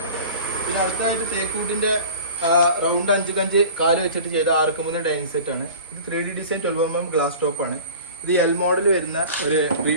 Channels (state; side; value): inverted; both; correlation -0.39